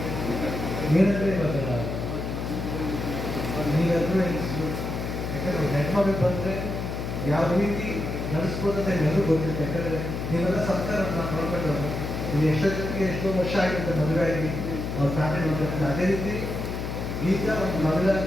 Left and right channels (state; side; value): noise; left; hum, 4 dB below the sound